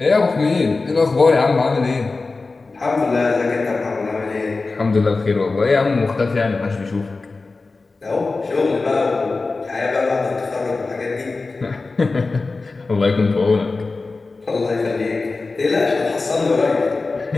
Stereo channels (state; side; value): quieter; right; 3.8 dB